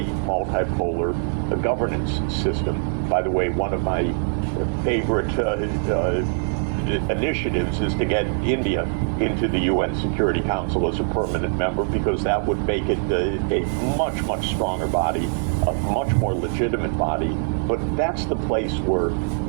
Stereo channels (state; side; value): silent; left; digital silence